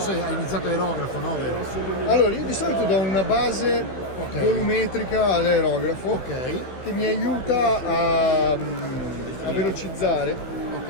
se hai iniziato aerografo, no? Vero? Allora, io di solito do una base volumetrica all'aerografo Ok, che mi aiuta a velocizzare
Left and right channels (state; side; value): late; right; 15 ms